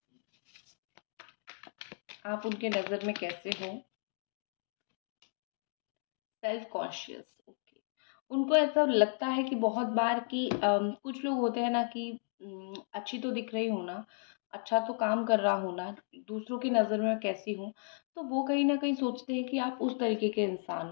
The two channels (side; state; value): right; silent; 55 dB below the other